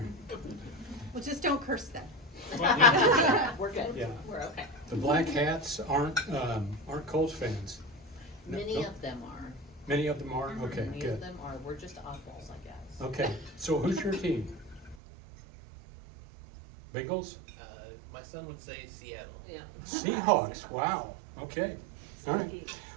Well, just don't curse them. We're good. Yeah. We're okay. The Black Hats aren't Colts fans. Many of them are. Many of them are? Okay, Many of good. them are. We're just oddballs, I guess. Okay, so who's your team? Bengals? My son would say Seattle. Yeah. Seahawks, wow, okay. All right.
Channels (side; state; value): left; drops out; at 15.0 s